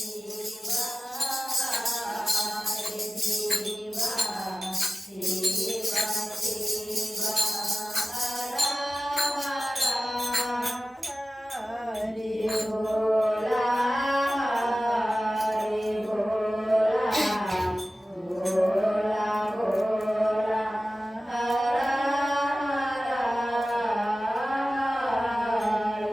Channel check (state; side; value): normal; both; correlation 0.96